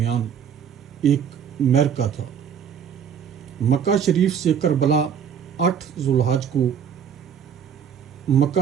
ایک معرکہ تھا۔ مکہ شریف سے کربلا 8 ذوالحج کو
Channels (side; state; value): left; quieter; 7.8 dB